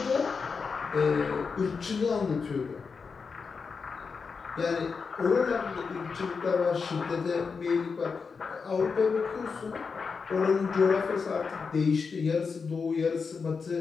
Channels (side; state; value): right; quieter; 5.2 dB